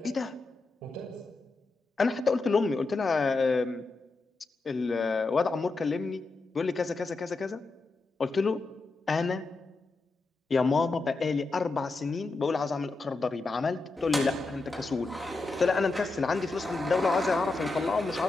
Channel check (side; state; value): right; quieter; 3.6 dB